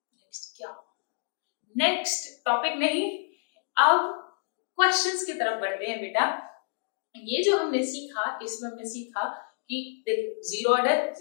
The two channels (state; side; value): silent; right; digital silence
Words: क्या, नेक्स्ट टॉपिक नहीं, अब क्वेश्चंस की तरफ बढ़ते हैं बेटा। ये जो हमने सीखा, इसमें हमने सीखा कि देखो जीरो ऑर्डर